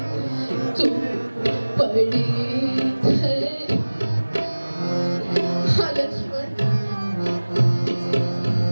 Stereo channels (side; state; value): both; inverted; correlation -1.00